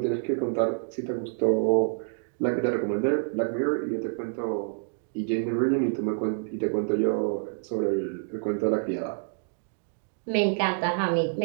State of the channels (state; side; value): silent; left; digital silence